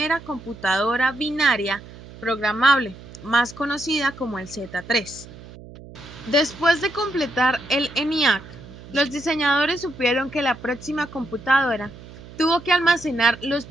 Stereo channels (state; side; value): noise; right; hum, 17 dB below the sound